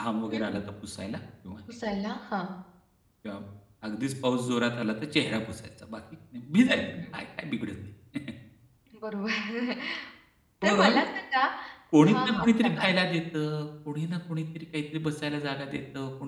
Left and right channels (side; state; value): both; identical; correlation 1.00